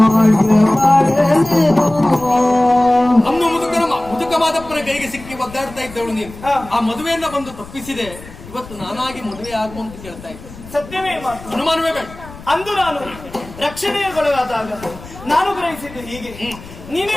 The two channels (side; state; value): left; noise; rumble, 17 dB below the sound